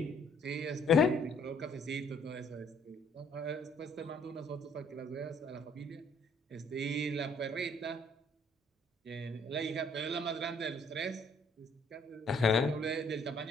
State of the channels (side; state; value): both; normal; correlation 0.63